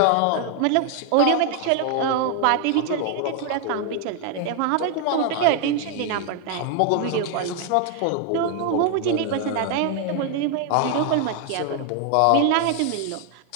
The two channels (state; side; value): different; both; correlation 0.00